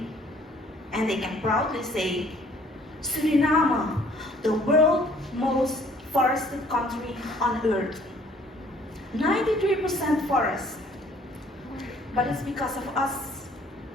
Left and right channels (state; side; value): normal; both; correlation 0.58